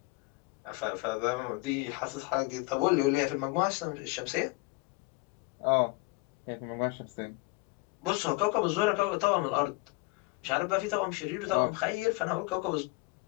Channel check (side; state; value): right; quieter; 25.5 dB